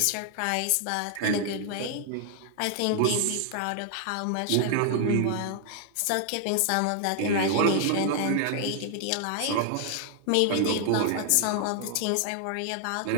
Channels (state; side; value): different; both; correlation 0.00